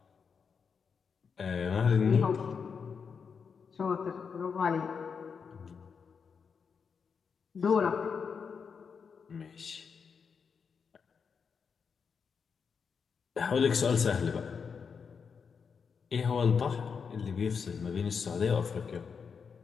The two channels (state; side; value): quieter; right; 6.0 dB